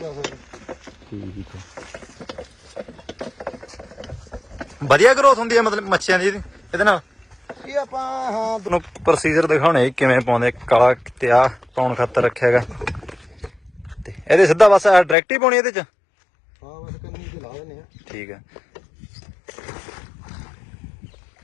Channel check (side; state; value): right; drops out; at 15.2 s